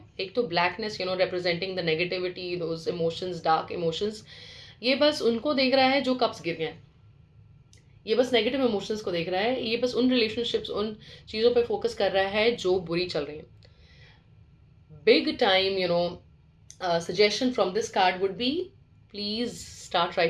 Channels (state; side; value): identical; both; correlation 1.00